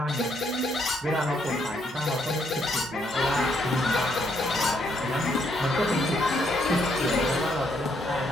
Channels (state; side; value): normal; both; correlation 0.73